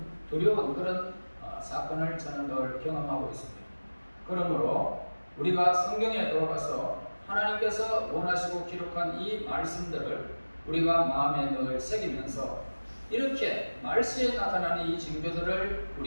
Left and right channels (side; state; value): both; inverted; correlation -1.00